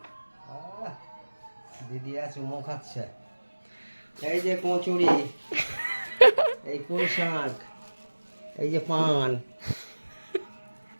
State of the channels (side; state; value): both; inverted; correlation -1.00